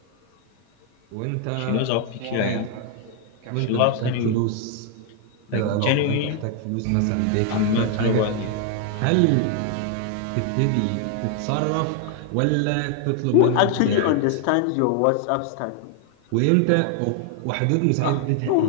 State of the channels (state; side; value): different; both; correlation 0.00